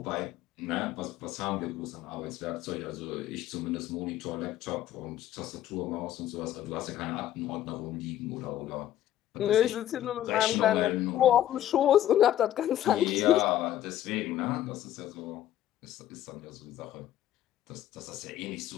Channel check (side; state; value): right; quieter; 12.2 dB